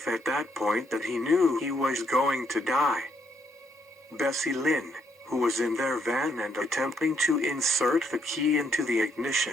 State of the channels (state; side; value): normal; both; correlation 0.73